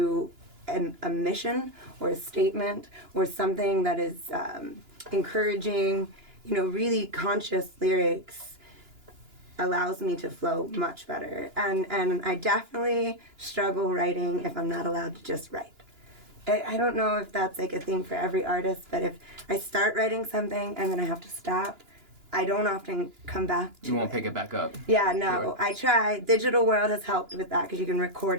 a mission or a statement or something that is encouraging, really conscious lyrics, allows me to flow much better. And I definitely struggle writing if I'm not allowed to just write. I don't know if that's like a thing for every artist, but if I start writing something and then I have to stop, I don't often come back to it. You won't pick it back up. Yeah, no. Sure. I try. Digital world has helped with that because you can record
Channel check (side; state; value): left; late; 2.9 ms